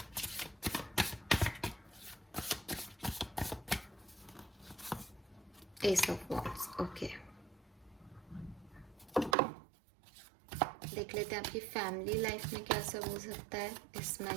Ace of Wands। Okay, देख लेते हैं आपकी फैमिली लाइफ में क्या सब हो सकता है इस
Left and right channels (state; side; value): drops out; left; at 9.3 s